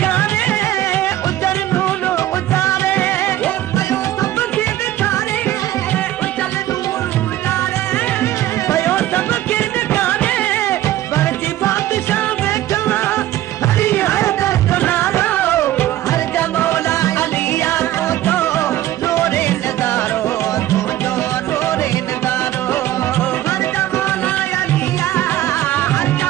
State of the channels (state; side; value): quieter; left; 14.1 dB